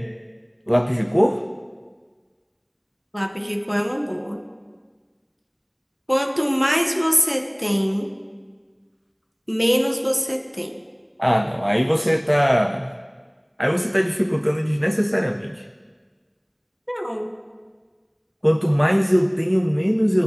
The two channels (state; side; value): identical; both; correlation 1.00